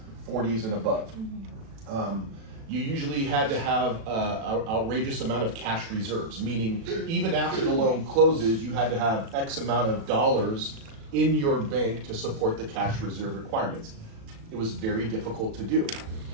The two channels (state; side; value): late; left; 36 ms